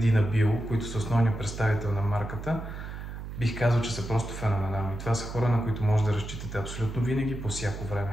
Bio, които са основният представител на марката, бих казал, че са просто феноменални. Това са хора, на които може да разчитате абсолютно винаги, по всяко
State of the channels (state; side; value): noise; right; hum, 9 dB below the sound